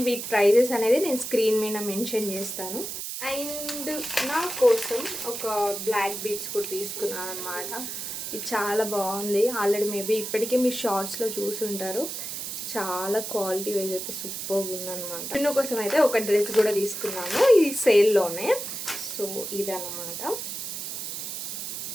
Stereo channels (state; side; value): noise; right; hiss, 6 dB below the sound